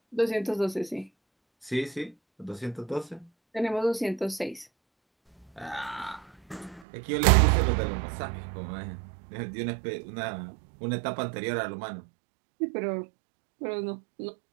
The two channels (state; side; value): drops out; left; at 6.9 s